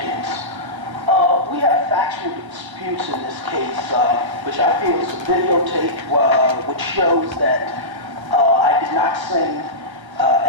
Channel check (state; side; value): late; left; 1.3 ms